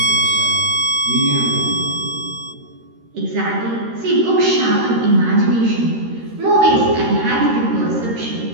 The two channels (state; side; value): late; left; 13 ms